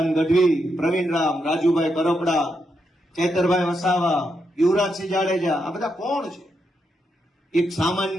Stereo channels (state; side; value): normal; both; correlation 0.82